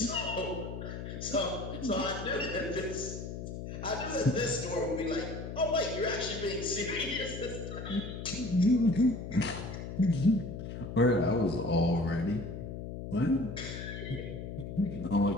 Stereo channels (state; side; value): noise; left; hum, 7 dB below the sound